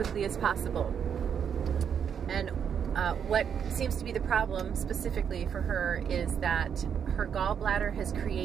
as possible. And what seems to be the problem specifically for her is that her gallbladder has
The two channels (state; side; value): quieter; left; 7.8 dB